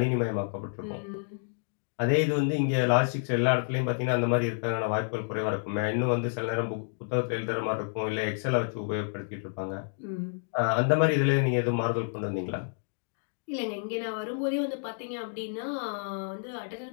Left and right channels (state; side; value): silent; right; digital silence